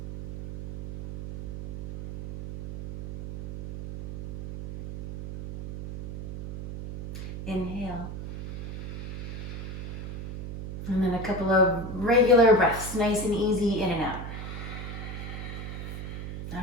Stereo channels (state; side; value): noise; right; hum, 8 dB below the sound